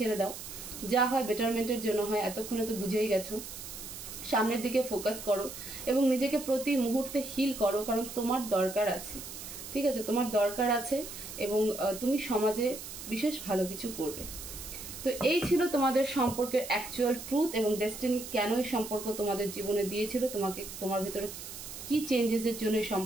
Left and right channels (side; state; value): right; noise; hiss, 10 dB below the sound